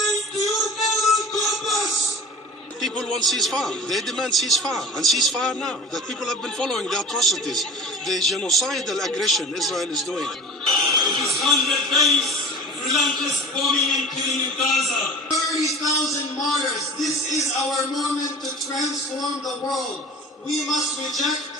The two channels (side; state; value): both; normal; correlation 0.39